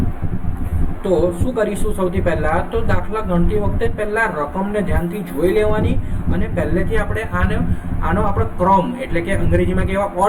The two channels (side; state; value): both; identical; correlation 1.00